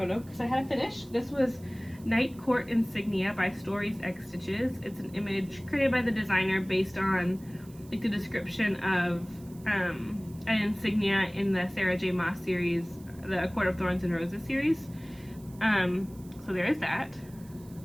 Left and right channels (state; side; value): noise; right; hiss, 25 dB below the sound